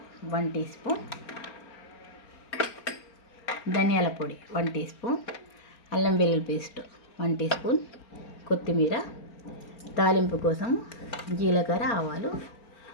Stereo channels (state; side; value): late; right; 4.4 ms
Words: 1 teaspoon. ధనియాల పొడి 1 టీ స్పూన్. అల్లం వెల్లుల్లి పేస్ట్ 1 టీ స్పూన్. కొత్తిమీర, తాలింపు కోసం జీలకర్ర, ఆవాలు,